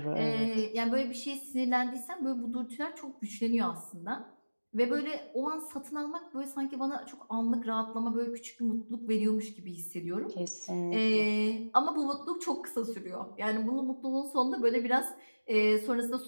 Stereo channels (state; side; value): inverted; both; correlation -1.00